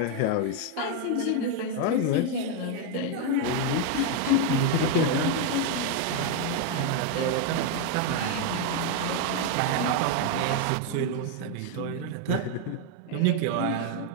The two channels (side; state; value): both; different; correlation 0.01